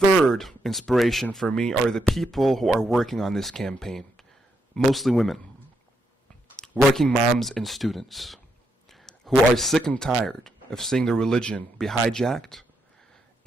inspiration for me are the people who are working on this campaign, mostly women, working moms and students, who are sick and tired of seeing their religion be hijacked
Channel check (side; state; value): both; normal; correlation 0.80